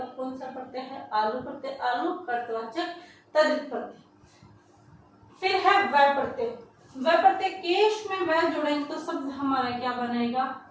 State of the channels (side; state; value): both; identical; correlation 1.00